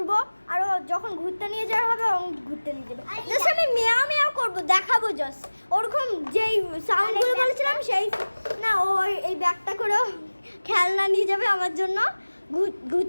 আর যখন ঘুরতে নিয়ে যাওয়া হবে ঘুরতে নিয়ে যাবে। জাস্ট আমি মেয়াও মেয়াও করবো, দেখাবো জাস্ট ওরকম যেই সাউন্ডগুলো বলেছিলাম সেই না। ও এই ব্যাগটা করে খেলনা নিয়ে যাবে আমার জন্য,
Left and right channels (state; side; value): inverted; both; correlation -1.00